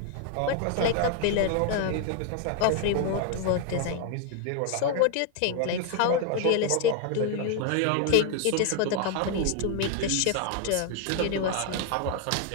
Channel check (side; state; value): both; different; correlation 0.00